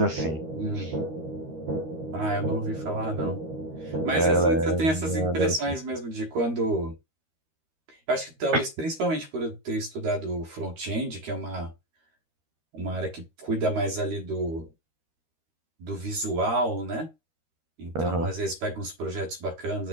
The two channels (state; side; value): late; left; 13 ms